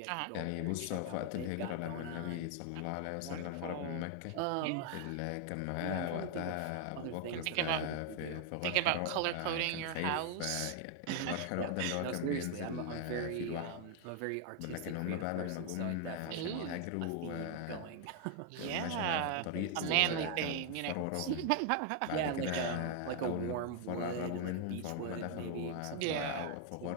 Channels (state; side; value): different; both; correlation 0.00